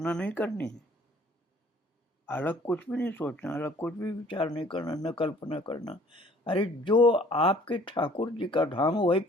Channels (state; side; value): normal; both; correlation 0.54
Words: नहीं करनी है, अलग कुछ भी नहीं सोचना, अलग कुछ भी विचार नहीं करना, न कल्पना करना। अरे जो आपके ठाकुर जी का धाम वही